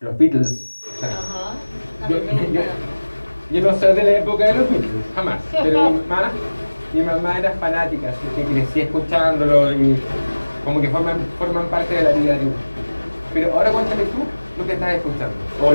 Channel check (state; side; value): inverted; both; correlation -1.00